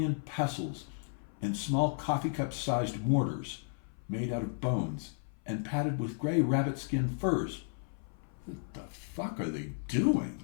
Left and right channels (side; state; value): right; silent; 55 dB below the other